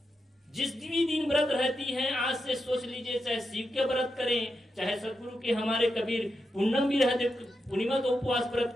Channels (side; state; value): both; normal; correlation 0.86